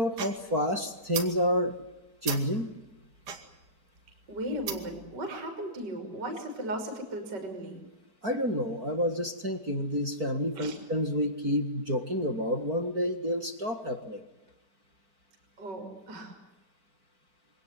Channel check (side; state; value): left; late; 4.5 ms